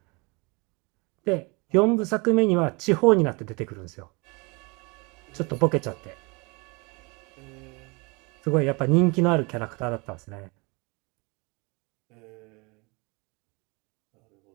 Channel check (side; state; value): left; quieter; 28.8 dB